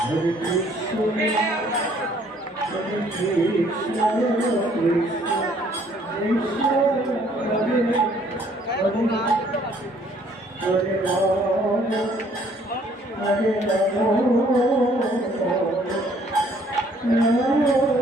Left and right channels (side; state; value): both; normal; correlation 0.62